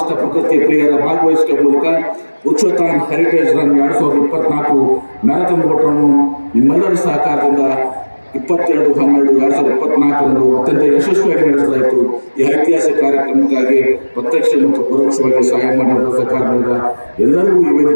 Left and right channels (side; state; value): both; inverted; correlation -1.00